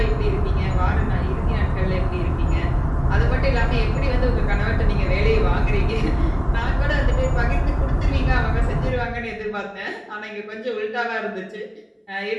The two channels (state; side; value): identical; both; correlation 1.00